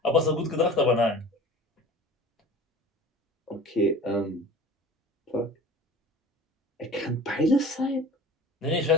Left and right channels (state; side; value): normal; both; correlation 0.40